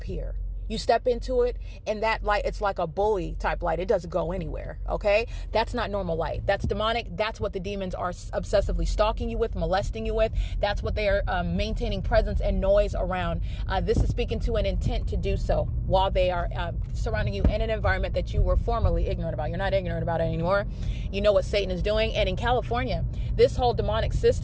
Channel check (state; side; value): identical; both; correlation 1.00